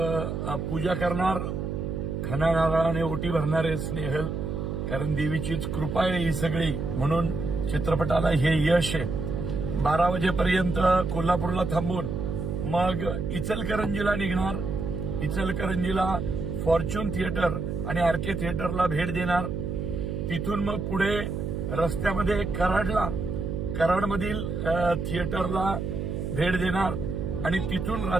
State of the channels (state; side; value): noise; right; hum, 3 dB below the sound